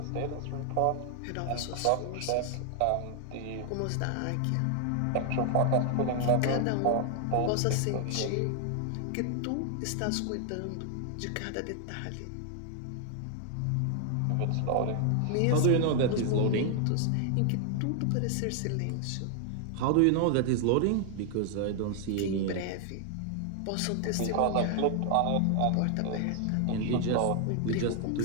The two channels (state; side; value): different; both; correlation 0.00